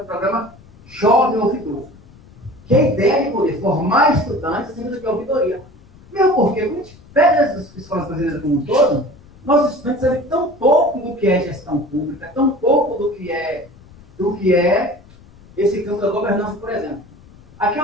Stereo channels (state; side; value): noise; left; rumble, 24 dB below the sound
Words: Jovem Ouvidor. Que a ideia é de poder formar estudantes acima do que a ouvidoria. Mesmo porque, quando a gente pega as escolas brasileiras como um todo, nossos estudantes sabem tão pouco do que é gestão pública, tão pouco do que é esse campo da governança, por exemplo. Aqui é